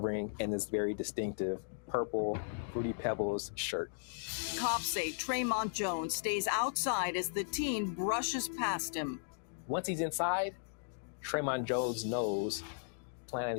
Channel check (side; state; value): right; silent; digital silence